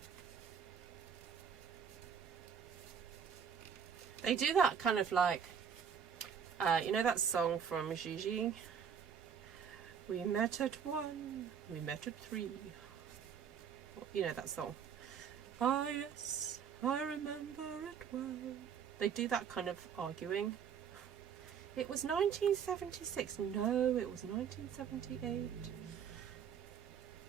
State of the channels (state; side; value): quieter; left; 7.5 dB